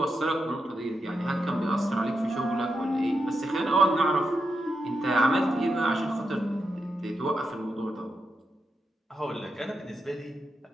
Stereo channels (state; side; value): normal; both; correlation 0.86